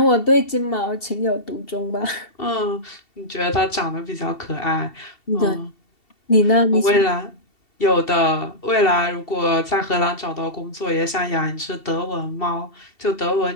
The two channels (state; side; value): late; right; 2.7 ms